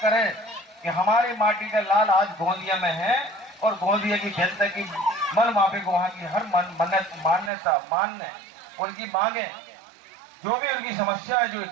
करें कि हमारी माटी का लाल आज गोंदिया में है, और गोंदिया की जनता की मन माफिक वहां की हर मान्यता मानने, उनकी मांगे, जो भी उनकी समस्या है, जो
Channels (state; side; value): drops out; left; at 7.5 s